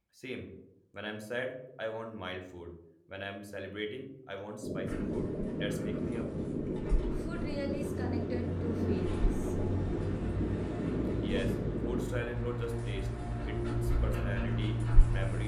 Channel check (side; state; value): both; identical; correlation 1.00